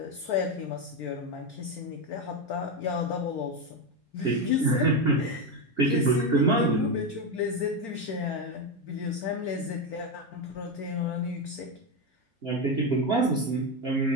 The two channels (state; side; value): normal; both; correlation 0.11